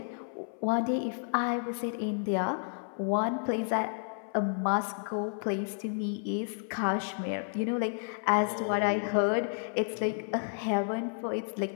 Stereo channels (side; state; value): right; silent; 56 dB below the other